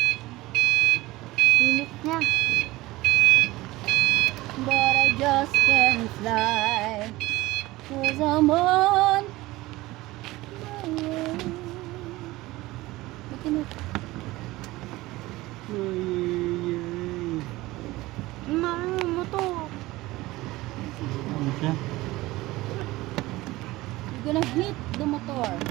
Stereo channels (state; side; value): quieter; left; 19.1 dB